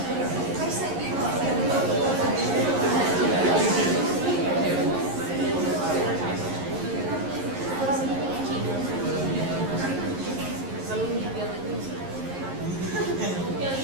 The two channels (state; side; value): late; left; 11 ms